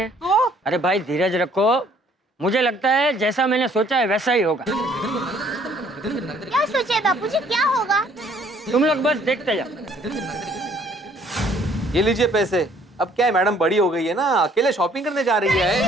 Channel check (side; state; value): both; normal; correlation 0.61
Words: अरे भाई धीरज रखो, मुझे लगता है जैसा मैंने सोचा है वैसा ही होगा। क्या सोचे बापूजी, क्या होगा? तुम लोग बस देखते जाओ। ये लीजिए पैसे। अब क्या है, मैडम बड़ी हो गई है ना, अकेले शॉपिंग करने जा रही है।